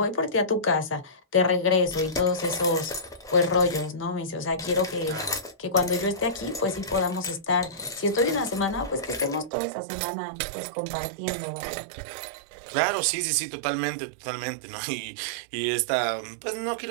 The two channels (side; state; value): left; drops out; at 9.5 s